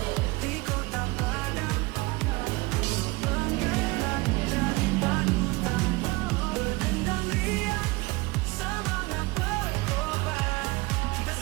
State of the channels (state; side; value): quieter; left; 23.4 dB